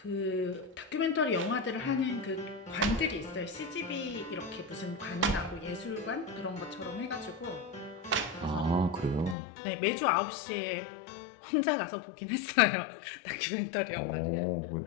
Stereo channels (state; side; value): drops out; right; at 9.3 s